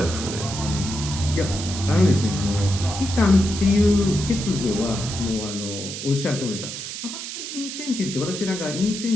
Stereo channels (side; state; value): right; noise; hiss, 7 dB below the sound